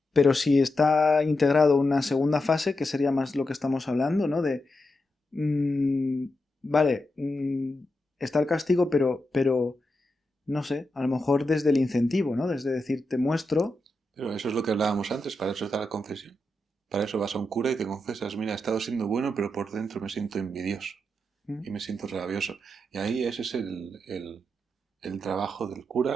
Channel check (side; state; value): both; normal; correlation 0.87